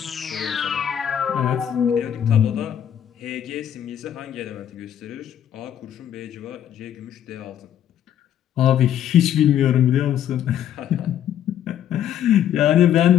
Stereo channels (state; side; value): quieter; right; 10.1 dB